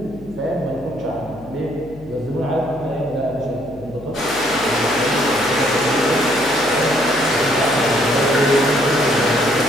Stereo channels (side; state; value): left; noise; hum, 19 dB below the sound